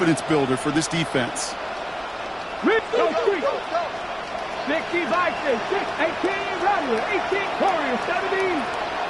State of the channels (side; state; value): both; identical; correlation 1.00